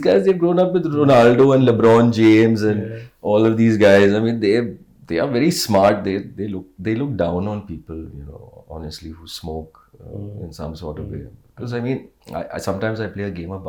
they've grown up with Ronaldo and LeBron James and all of these guys. I mean, they are very smart. They look down on people, honestly, who smoke in some sort of way. Because I mean, I sometimes I play a game of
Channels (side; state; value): both; identical; correlation 1.00